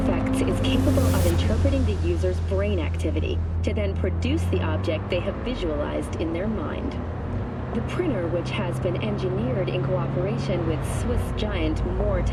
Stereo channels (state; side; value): identical; both; correlation 1.00